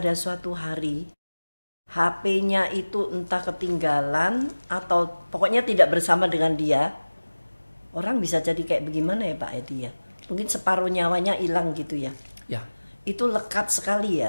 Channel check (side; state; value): both; inverted; correlation -1.00